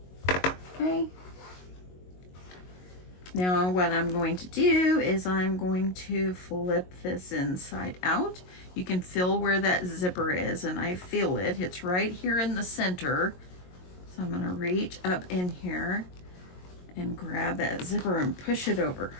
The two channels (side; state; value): right; late; 22 ms